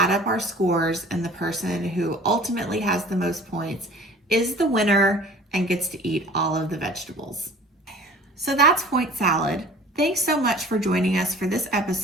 up our scores, and the person who ultimately has the most points is the winner and gets to eat all of the vegetables. So that's point salad. Thanks so much for joining us for this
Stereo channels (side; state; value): both; normal; correlation 0.46